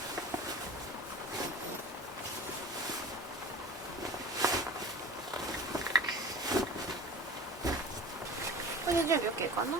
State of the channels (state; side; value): normal; both; correlation 0.37